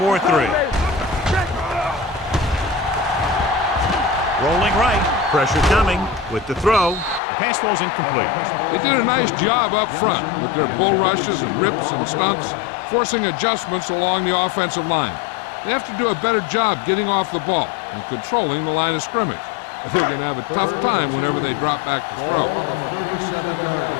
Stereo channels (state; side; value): drops out; right; at 7.2 s